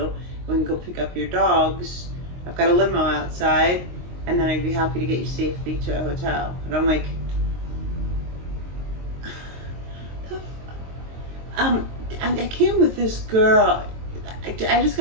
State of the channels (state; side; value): late; left; 22 ms